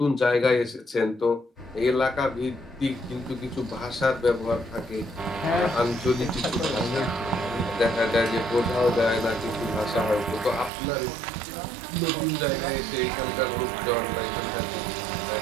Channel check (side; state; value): left; drops out; at 10.7 s